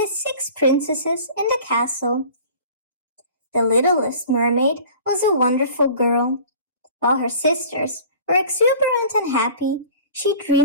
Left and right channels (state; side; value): inverted; both; correlation -0.45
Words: 6 princesses in the castle. The littlest mermaid was a wonderful girl. While her sisters were exuberant and happy, she